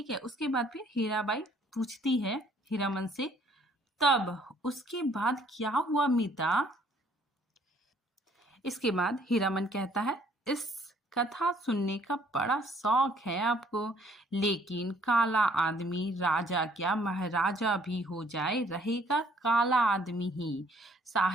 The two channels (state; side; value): normal; both; correlation 0.62